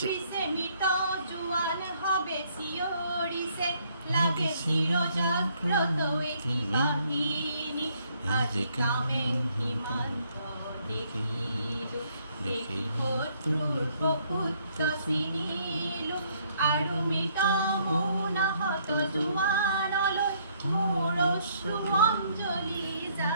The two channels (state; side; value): inverted; both; correlation -0.67